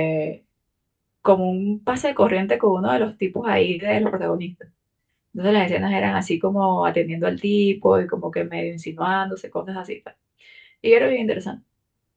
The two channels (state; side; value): identical; both; correlation 1.00